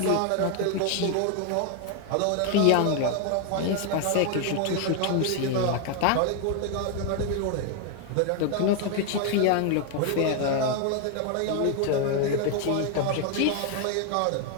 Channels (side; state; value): both; different; correlation 0.01